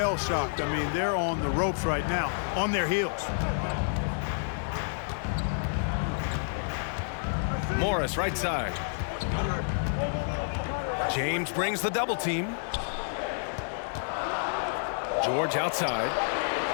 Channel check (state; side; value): silent; right; digital silence